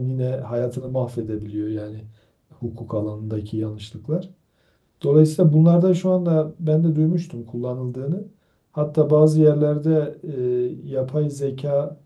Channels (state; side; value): identical; both; correlation 1.00